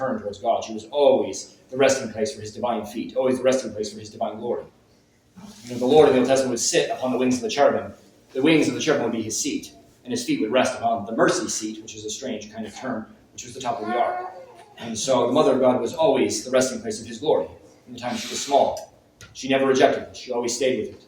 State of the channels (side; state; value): both; identical; correlation 1.00